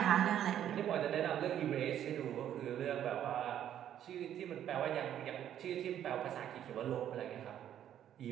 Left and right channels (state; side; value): quieter; left; 10.5 dB